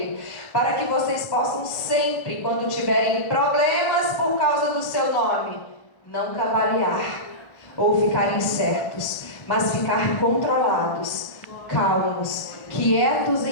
para que vocês possam sempre, quando tiverem problemas por causa do seu nome, não cavalear ou ficar incertos, mas ficar controlados, calmos, quietos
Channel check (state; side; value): late; right; 1.4 ms